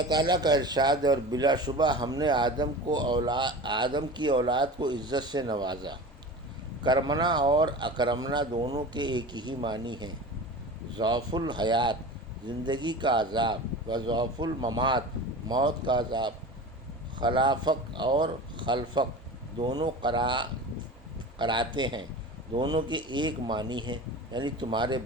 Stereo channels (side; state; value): both; normal; correlation 0.33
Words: تعالیٰ کا ارشاد ہے، اور بلا شبہ ہم نے آدم کی اولاد کو عزت سے نوازا۔ کرمنا اور اکرمنا دونوں کے ایک ہی معنی ہیں۔ ضعف الحیات، زندگی کا عذاب، و ضعف الممات، موت کا عذاب۔ خلافق اور خلفق دونوں قراتے ہیں، دونوں کے ایک معنی ہیں، یعنی تمہارے